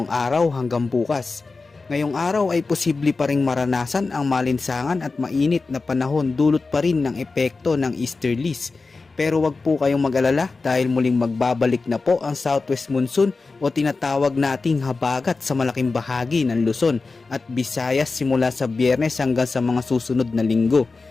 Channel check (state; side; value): quieter; right; 4.0 dB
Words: araw hanggang bukas. Ngayong araw ay posible pa ring maranasan ang malinsangan at mainit na panahon dulot pa rin ng epekto ng easterlies. Pero wag po kayong mag-alala dahil muling magbabalik na po ang southwest monsoon o tinatawag nating habagat sa malaking bahagi ng Luzon at Visayas simula sa Biyernes hanggang sa mga susunod na linggo.